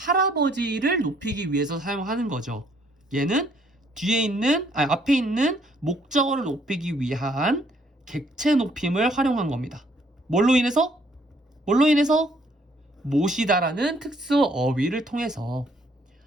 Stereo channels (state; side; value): normal; both; correlation 0.66